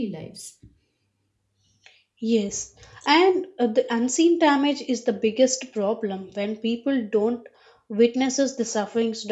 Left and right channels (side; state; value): both; identical; correlation 1.00